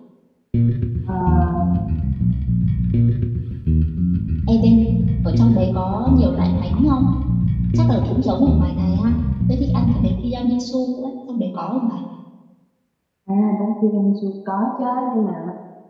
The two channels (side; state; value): both; identical; correlation 1.00